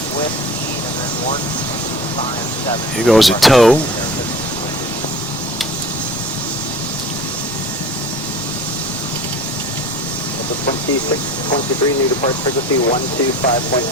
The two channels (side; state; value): both; normal; correlation 0.41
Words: whiskey and then 157. Here goes a tow. The 2623, new departure frequency